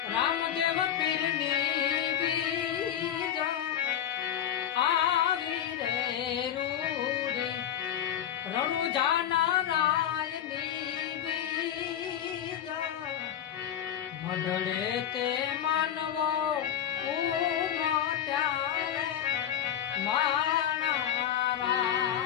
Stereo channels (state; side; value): quieter; right; 10.3 dB